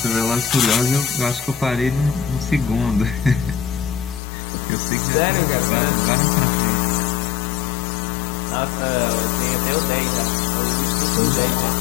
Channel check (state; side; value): drops out; right; at 4.2 s